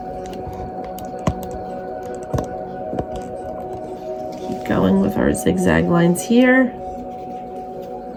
keep going with our zigzag lines here.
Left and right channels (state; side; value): identical; both; correlation 1.00